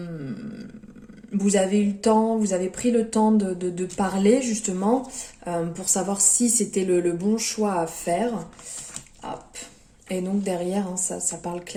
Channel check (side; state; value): both; identical; correlation 1.00